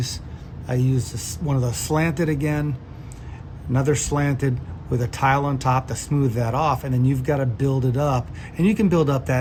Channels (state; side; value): identical; both; correlation 1.00